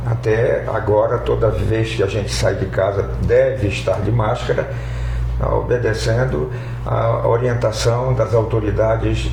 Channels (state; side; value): identical; both; correlation 1.00